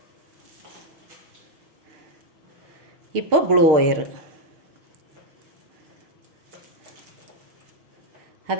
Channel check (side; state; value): left; late; 6.5 ms